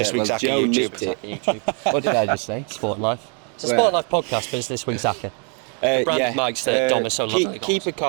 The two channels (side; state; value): left; quieter; 38.6 dB